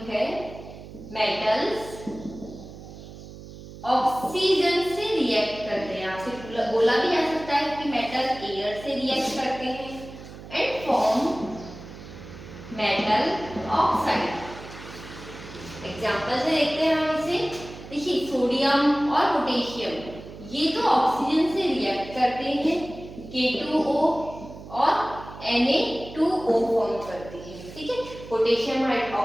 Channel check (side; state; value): right; noise; hum, 15 dB below the sound